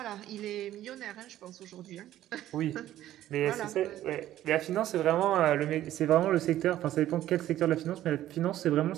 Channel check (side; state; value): left; quieter; 13.2 dB